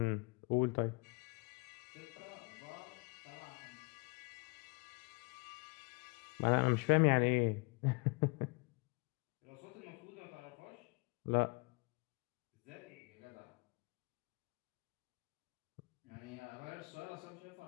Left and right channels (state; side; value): quieter; right; 30.0 dB